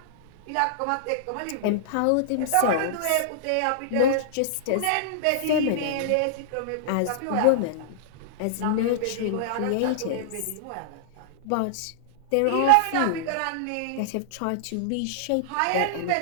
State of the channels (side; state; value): both; different; correlation -0.02